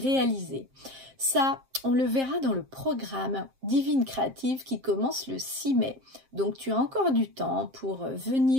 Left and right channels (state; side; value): late; left; 7.6 ms